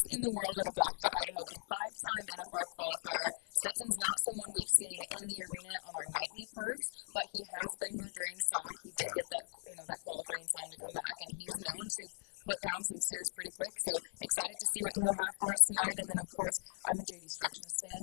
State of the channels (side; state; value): right; silent; 52 dB below the other